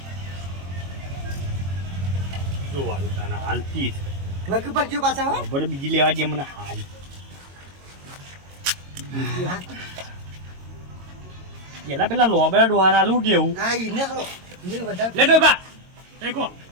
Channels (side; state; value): left; late; 22 ms